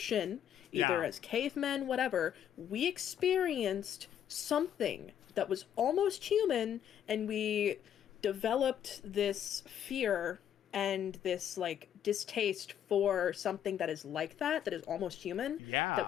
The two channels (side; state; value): right; quieter; 9.7 dB